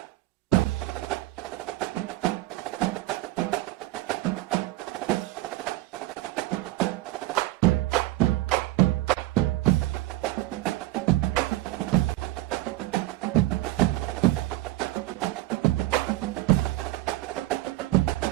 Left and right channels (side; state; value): left; quieter; 17.5 dB